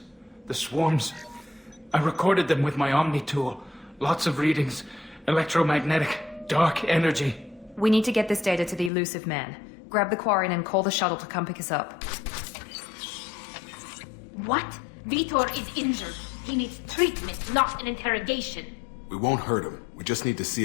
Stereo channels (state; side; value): drops out; right; at 8.9 s